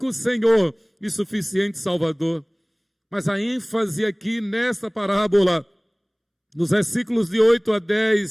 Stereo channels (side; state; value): both; identical; correlation 1.00